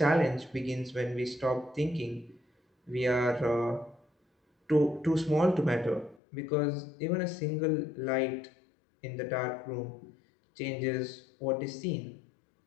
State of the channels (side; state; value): right; drops out; at 6.2 s